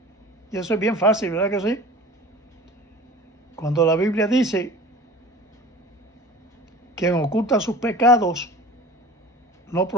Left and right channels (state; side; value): normal; both; correlation 0.40